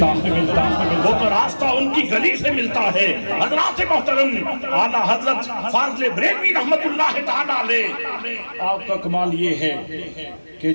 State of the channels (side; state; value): both; inverted; correlation -1.00